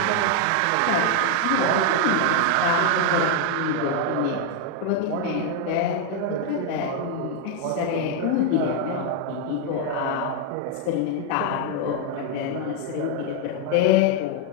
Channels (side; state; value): both; different; correlation 0.00